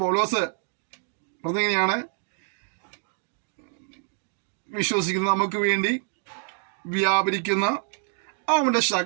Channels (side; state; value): left; silent; 60 dB below the other